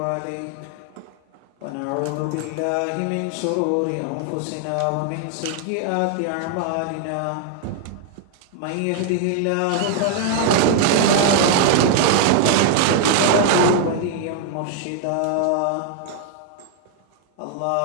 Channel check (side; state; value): both; different; correlation 0.00